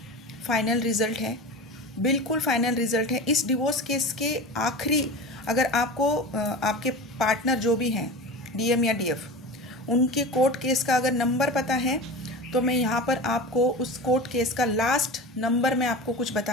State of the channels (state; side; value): normal; both; correlation 0.30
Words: फाइनल रिज़ल्ट है, बिल्कुल फाइनल रिज़ल्ट है। इस डिवोर्स केस के आखिरी, अगर आपको आपके पार्टनर जो भी हैं, डीएम या डीएफ, उनके कोर्ट केस का अगर नंबर पता है तो मैं यहाँ पर आपको उस कोर्ट केस का लास्ट नंबर मैं आपको कुछ